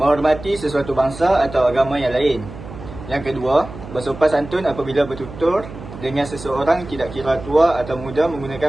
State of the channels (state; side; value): noise; right; hum, 13 dB below the sound